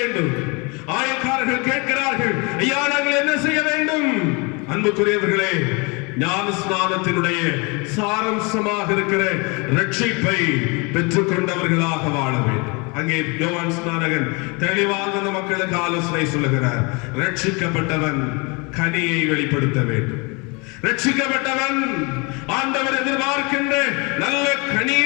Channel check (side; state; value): right; quieter; 29.4 dB